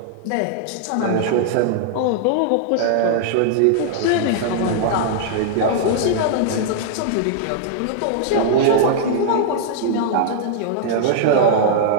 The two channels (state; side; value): different; both; correlation -0.01